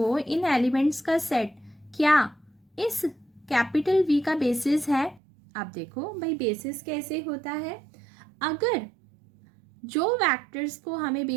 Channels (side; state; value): left; drops out; at 5.2 s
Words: इन एलिमेंट्स का सेट क्या इस कैपिटल V का बेसिस है। आप देखो भाई बेसिस कैसे होता है, अगर जो वेक्टर्स को हमें